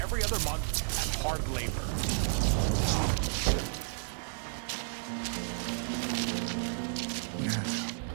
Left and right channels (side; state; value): left; silent; digital silence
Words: every other month at hard labor.